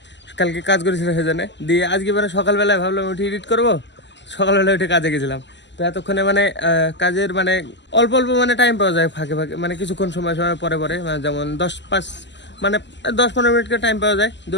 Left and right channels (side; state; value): right; late; 0.52 ms